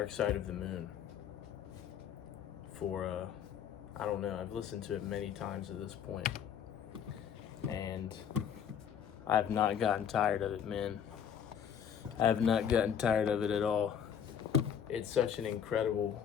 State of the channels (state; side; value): quieter; right; 8.3 dB